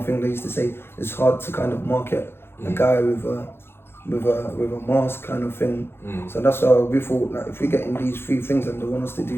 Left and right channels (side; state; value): right; late; 0.11 ms